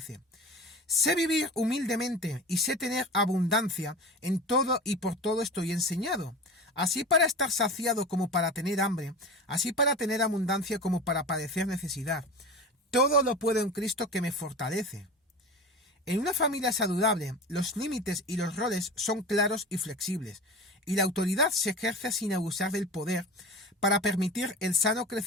sé vivir humildemente y sé tener abundancia, en todo y por todo estoy enseñado, así para estar saciado como para tener hambre, así para tener abundancia como para padecer necesidad. Todo lo puedo en Cristo que me fortalece. En una familia saludable, los límites y los roles son claros y flexibles, y la autoridad se ejerce sin abusar del poder para permitir el sano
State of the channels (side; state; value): both; normal; correlation 0.32